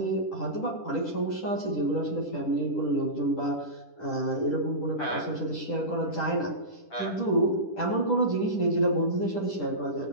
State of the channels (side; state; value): right; late; 10 ms